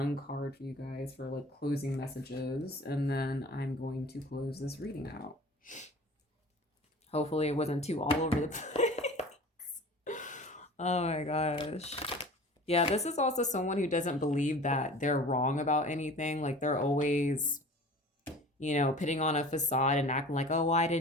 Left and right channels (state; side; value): normal; both; correlation 0.41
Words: card for you guys for like closing messages. And then I'm going to close this reading out. Hopefully it wasn't too all over the place. Oh my gosh. Yeah, this is also someone who doesn't believe that they're wrong about anything. Like they're always, you know, putting on a facade and acting like, oh, well, I